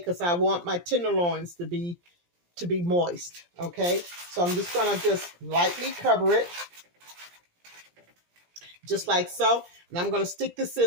I want my tenderloins to be moist, okay? So I'm just going to just lightly cover it, just like so. And I'm going to stick this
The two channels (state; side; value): late; left; 17 ms